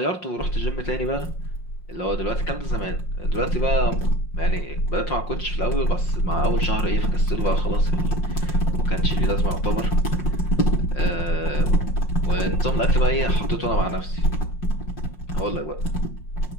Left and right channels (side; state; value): right; late; 5.6 ms